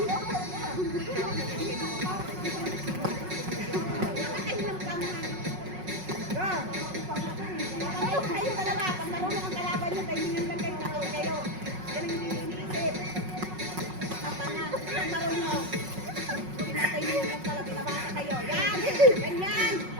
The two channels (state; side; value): late; left; 5.4 ms